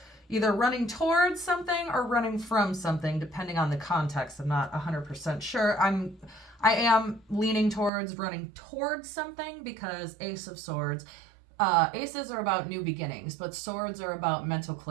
either running towards something or running from something, depending on the context. I'm not 100% sure. I am leaning towards running towards something because Ace of Swords, aces are about new beginnings, but swords are about mental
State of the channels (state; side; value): drops out; left; at 7.9 s